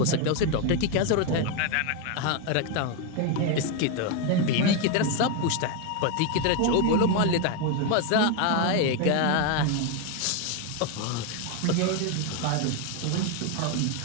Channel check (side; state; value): both; different; correlation 0.02